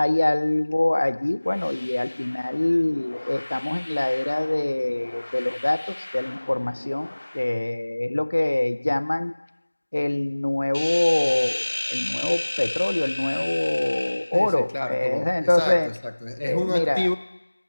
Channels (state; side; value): inverted; both; correlation -1.00